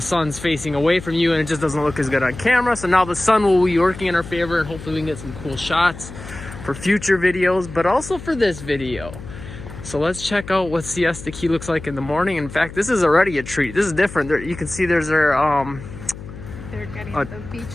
sun's facing away from you and it just doesn't look as good on camera. So now the sun will be working in our favor and hopefully we can get some cool shots for future videos, but also for this video. So let's check out what Siesta Key looks like in the morning. In fact, this is already a treat. This is different. There, you can see there's their they're getting the beach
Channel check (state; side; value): noise; left; hum, 13 dB below the sound